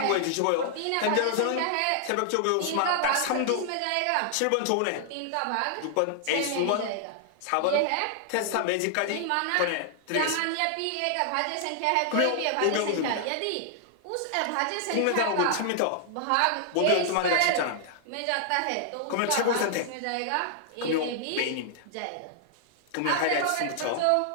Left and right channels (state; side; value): different; both; correlation -0.01